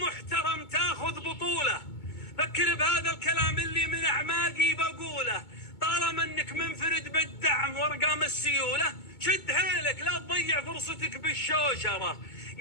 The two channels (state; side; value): late; right; 2.2 ms